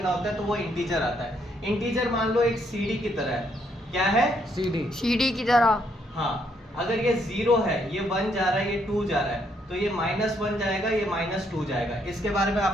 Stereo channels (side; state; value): both; normal; correlation 0.73